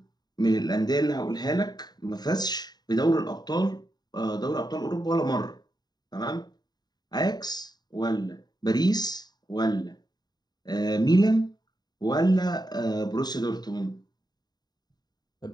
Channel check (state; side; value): late; right; 0.20 ms